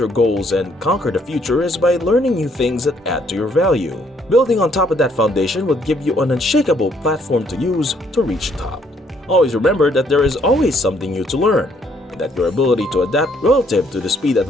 goals, and conquer the future is by learning new things that add to your value. Building on top of that foundation would give you an unshakable platform to use to reach the top. Always remember that there is always something new to learn, and that your ability to adapt relative to the speed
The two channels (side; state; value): both; normal; correlation 0.67